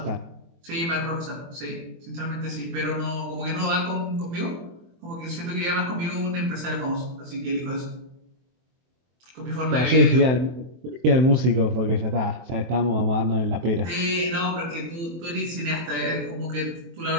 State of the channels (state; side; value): late; left; 23 ms